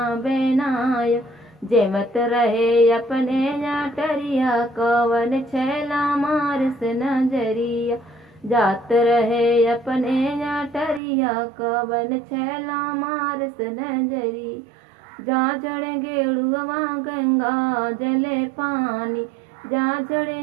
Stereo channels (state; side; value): drops out; left; at 11.0 s